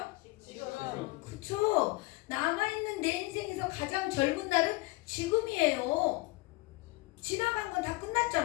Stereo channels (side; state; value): right; quieter; 22.8 dB